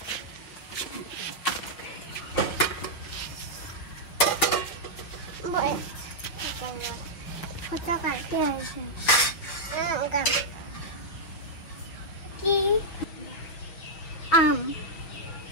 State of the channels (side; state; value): right; late; 6.4 ms